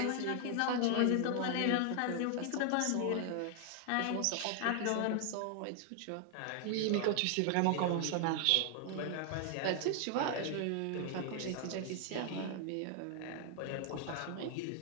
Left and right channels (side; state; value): both; different; correlation 0.00